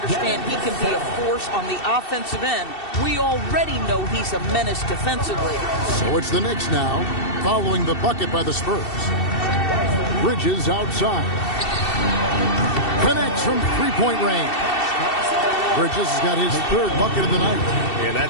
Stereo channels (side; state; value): right; late; 2.7 ms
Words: he can be a force on the offensive end. We already know he's a menace defensively. So it's the Knicks now, following the bucket by the Spurs. Bridges outside. Connects from three-point range. Bridges has got his third bucket of the night. And